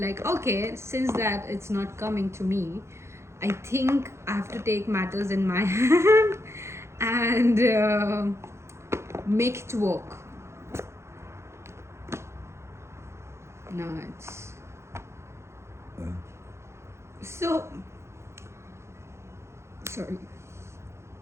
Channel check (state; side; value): late; left; 0.13 ms